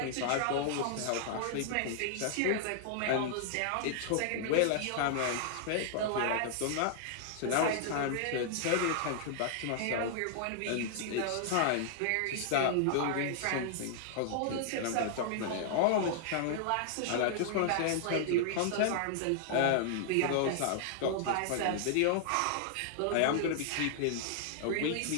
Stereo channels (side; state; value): both; different; correlation -0.01